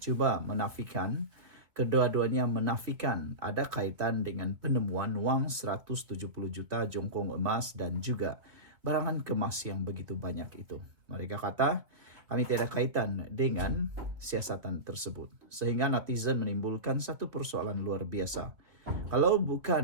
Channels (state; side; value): late; left; 2.6 ms